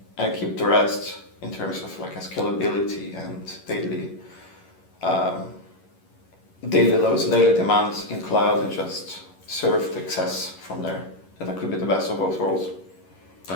and keep the rest in terms of like a scalability and daily loads and daily demands in cloud and just serve the excess from there. And that could be the best of both worlds.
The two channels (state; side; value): late; right; 11 ms